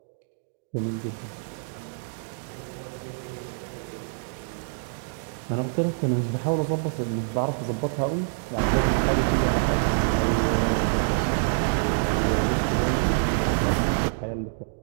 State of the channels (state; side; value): silent; left; digital silence